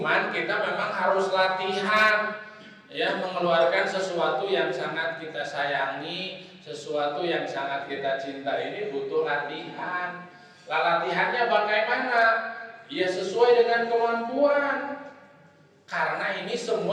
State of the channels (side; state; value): both; identical; correlation 1.00